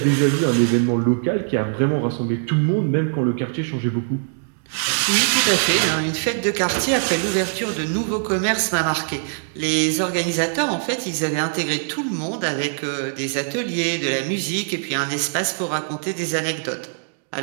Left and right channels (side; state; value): left; silent; digital silence